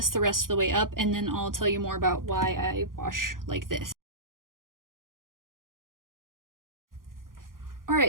the rest of the way up, and then I'll tell you more about why I wash like this.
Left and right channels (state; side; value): late; left; 0.91 ms